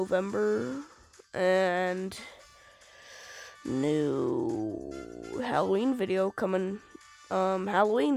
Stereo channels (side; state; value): both; identical; correlation 1.00